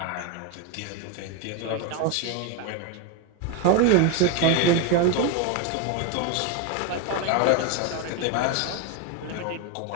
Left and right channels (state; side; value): different; both; correlation 0.02